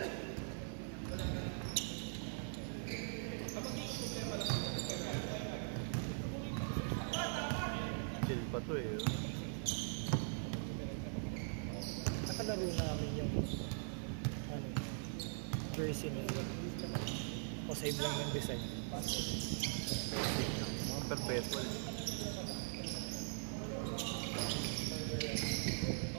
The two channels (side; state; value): left; silent; digital silence